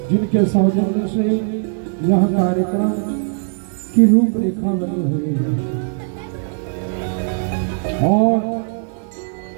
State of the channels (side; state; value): left; silent; 55 dB below the other